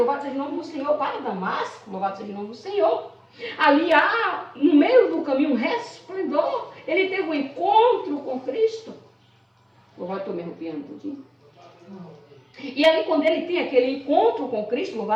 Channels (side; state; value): both; identical; correlation 1.00